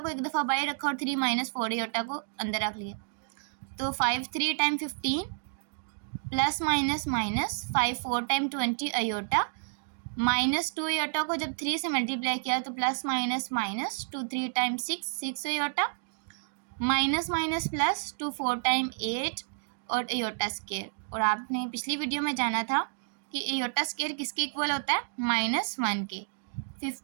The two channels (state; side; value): silent; left; digital silence